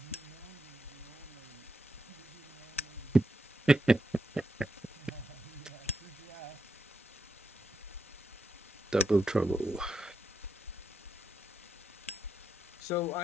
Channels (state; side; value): normal; both; correlation 0.83